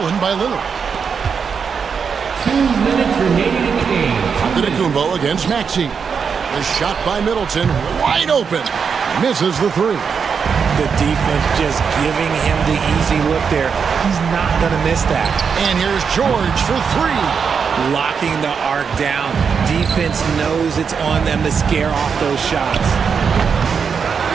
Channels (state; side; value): quieter; left; 6.2 dB